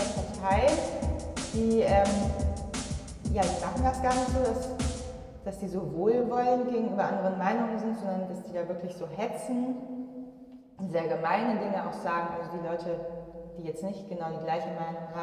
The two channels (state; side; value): identical; both; correlation 1.00